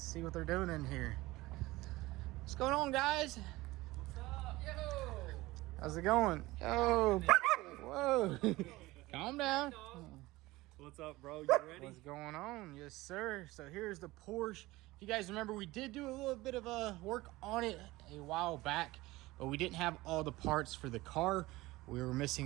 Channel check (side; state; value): left; quieter; 19.5 dB